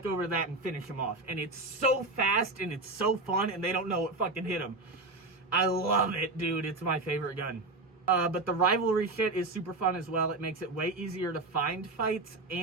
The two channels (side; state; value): left; quieter; 3.2 dB